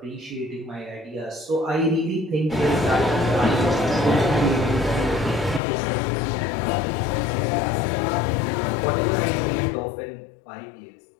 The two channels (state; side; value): drops out; right; at 5.6 s